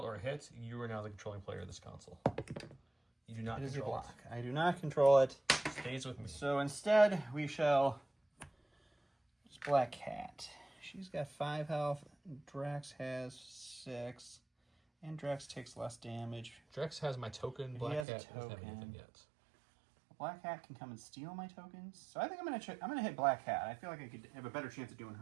or a hit, you are now the controlling player of this console. You do not It is your control block. I do not control it. it. Stays with me. So instead, we shall... It's Black Cat. She's got 5 health. Drax has 6. And Drax takes less damage. Drax has my token. Black has a Cat doesn't have token. anything yet. Black Cat can come and steal my tokens. So I think I'm gonna hit Black Cat. I feel like I could have a better chance of doing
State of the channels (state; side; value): drops out; left; at 18.1 s